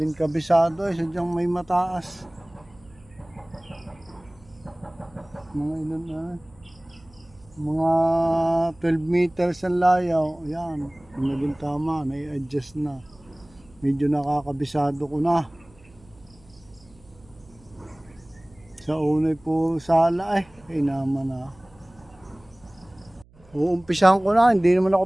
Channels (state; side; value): noise; right; hum, 27 dB below the sound